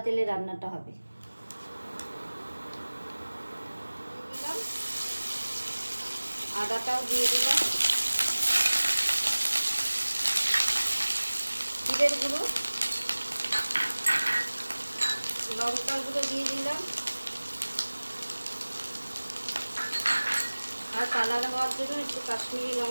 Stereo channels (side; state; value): both; inverted; correlation -1.00